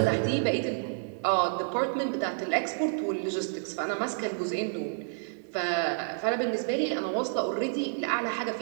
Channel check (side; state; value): left; silent; digital silence